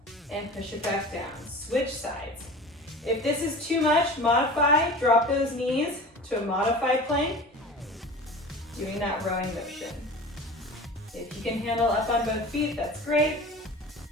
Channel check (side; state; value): both; normal; correlation 0.36